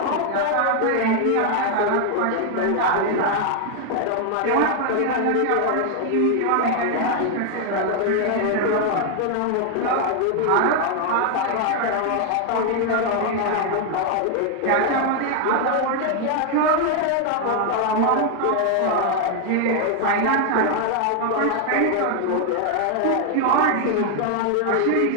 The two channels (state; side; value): different; both; correlation 0.00